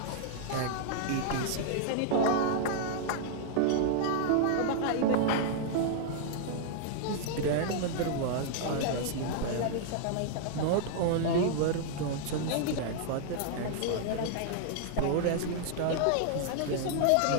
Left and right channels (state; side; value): different; both; correlation -0.01